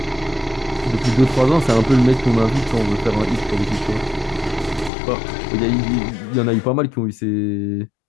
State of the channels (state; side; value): drops out; right; at 4.9 s